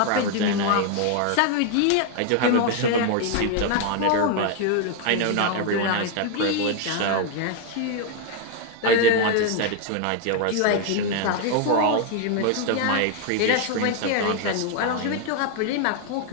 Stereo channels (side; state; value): both; different; correlation 0.01